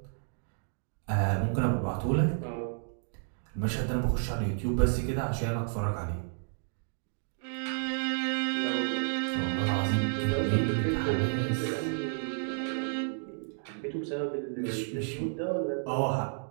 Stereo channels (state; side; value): silent; left; digital silence